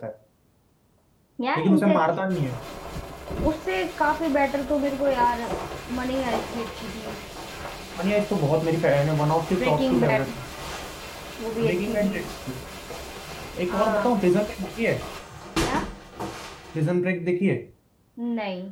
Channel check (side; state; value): both; identical; correlation 1.00